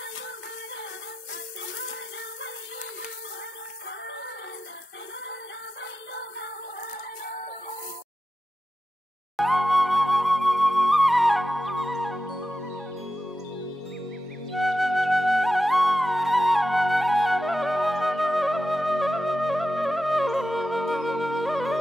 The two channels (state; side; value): normal; both; correlation 0.91